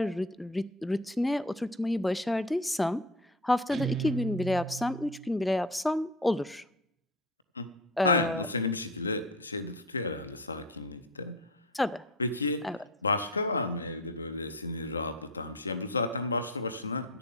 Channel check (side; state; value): both; normal; correlation 0.31